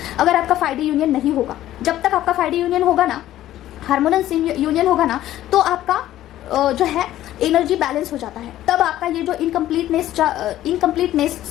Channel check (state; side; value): quieter; right; 13.5 dB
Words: अगर आपका 5D यूनियन नहीं होगा। जब तक आपका 5D यूनियन होगा ना, हार्मोनस यूनियन होगा ना, तो आपका जो है एनर्जी बैलेंस हो जाता है, तब आपका ये जो